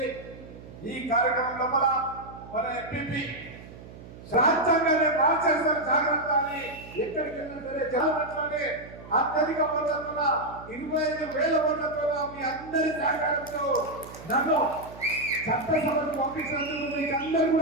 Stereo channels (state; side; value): noise; right; hum, 16 dB below the sound